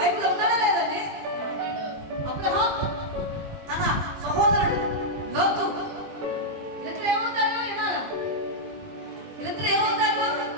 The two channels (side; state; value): left; late; 20 ms